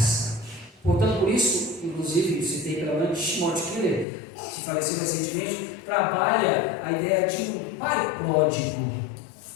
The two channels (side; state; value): right; drops out; at 4.0 s